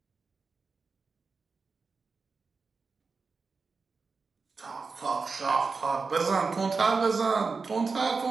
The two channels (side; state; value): left; quieter; 4.5 dB